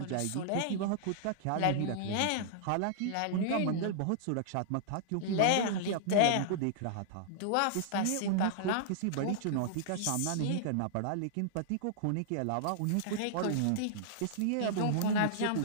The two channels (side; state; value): both; different; correlation -0.01